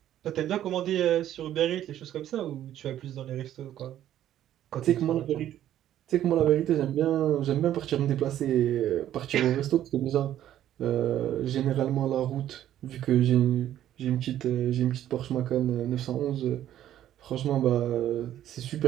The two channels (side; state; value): left; quieter; 11.9 dB